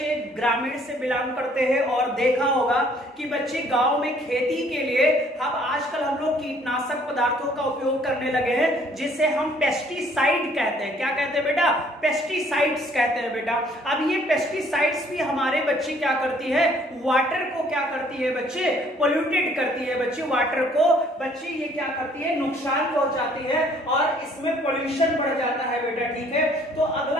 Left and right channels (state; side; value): normal; both; correlation 0.60